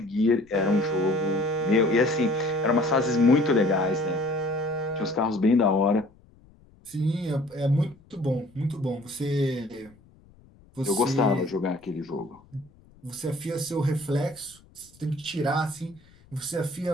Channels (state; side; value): noise; left; rumble, 28 dB below the sound